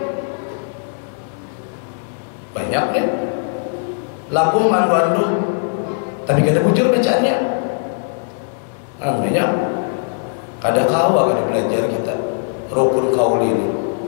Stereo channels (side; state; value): right; silent; 66 dB below the other